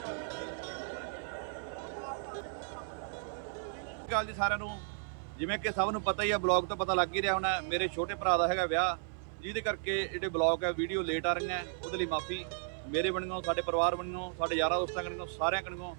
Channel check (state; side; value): silent; left; 55 dB below the other